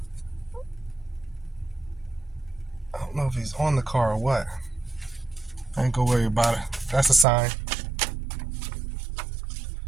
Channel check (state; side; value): drops out; left; at 7.2 s